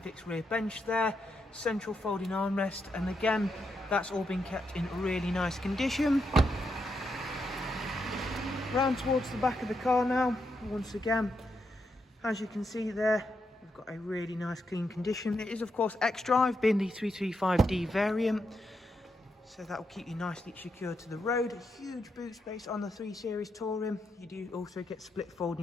rear bench there, central folding armrest, and again, that's all been kept in really nice condition. Round towards the back of the car now, once again, as you can see there, we've got a really nice clean condition. It is of course X-Drive, being the 335D variant, so that will keep you nicely secured to the road. A huge boot space on the 3 Series Touring. You do also get split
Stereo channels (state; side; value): normal; both; correlation 0.82